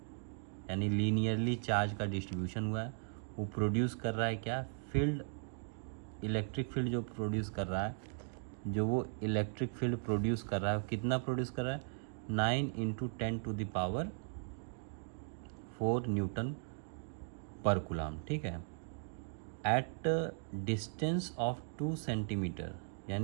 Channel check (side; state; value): left; silent; digital silence